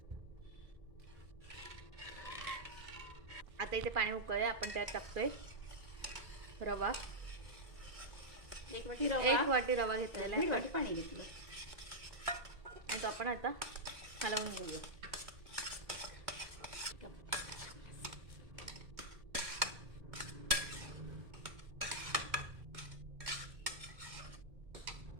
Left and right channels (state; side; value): late; left; 2.4 ms